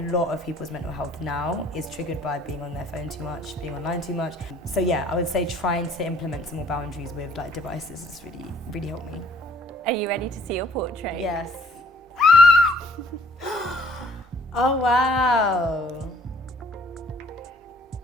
of people's mental health now is triggered by being on their phone too much, being online too much. So yeah, I would say trying to implement some more boundaries with like devices has really helped me. Are you ready to see your portrait? Yes. Oh wow.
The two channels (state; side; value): normal; both; correlation 0.59